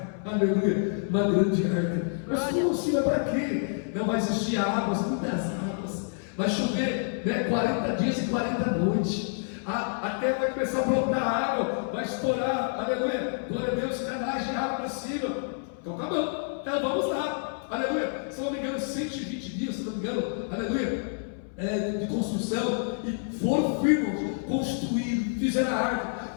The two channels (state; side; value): silent; right; 59 dB below the other